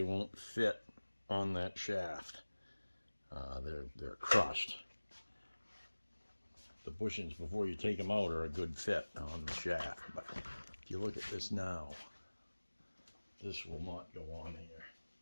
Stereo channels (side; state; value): both; inverted; correlation -1.00